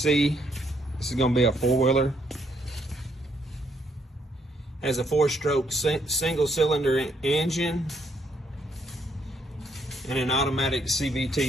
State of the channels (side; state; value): both; normal; correlation 0.72